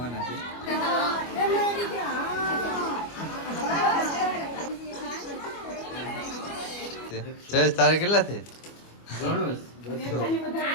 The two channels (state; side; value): late; right; 25 ms